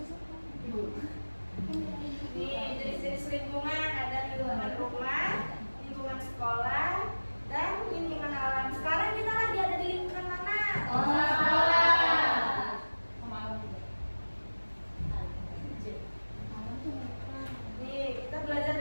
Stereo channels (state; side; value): inverted; both; correlation -1.00